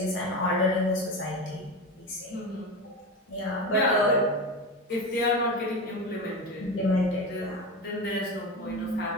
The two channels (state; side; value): normal; both; correlation 0.23